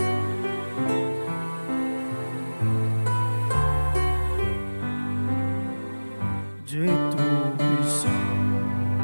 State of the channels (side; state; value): both; inverted; correlation -1.00